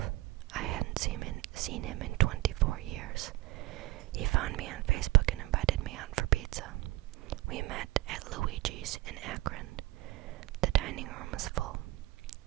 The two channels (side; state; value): left; quieter; 18.3 dB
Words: I hadn't seen him in 24 years. He found me on Facebook and invited me out for pizza. We met at Luigi's in Akron. The dining room was full.